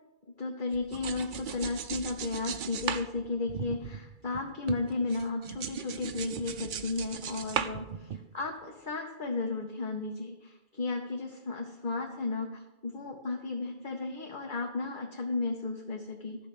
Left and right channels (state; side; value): late; left; 2.3 ms